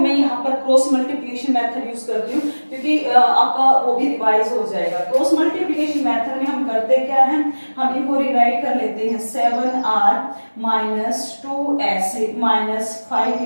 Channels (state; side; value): inverted; both; correlation -1.00